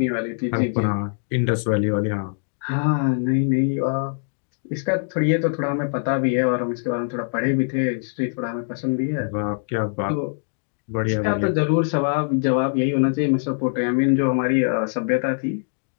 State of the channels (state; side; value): silent; right; digital silence